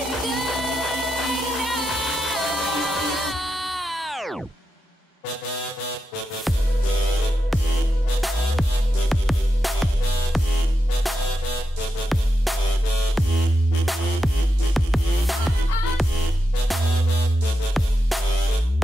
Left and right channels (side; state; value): both; normal; correlation 0.87